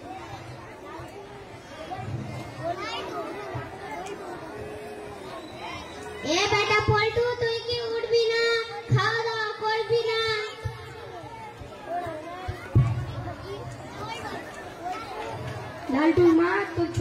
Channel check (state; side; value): identical; both; correlation 1.00